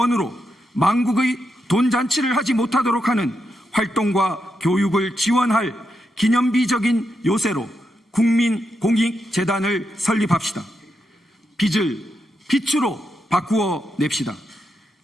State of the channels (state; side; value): normal; both; correlation 0.84